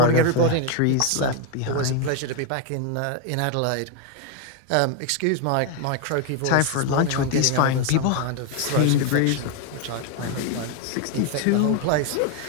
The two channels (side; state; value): both; different; correlation 0.01